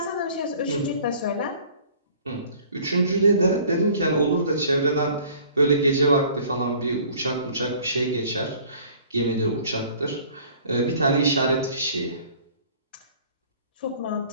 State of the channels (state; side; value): inverted; both; correlation -0.51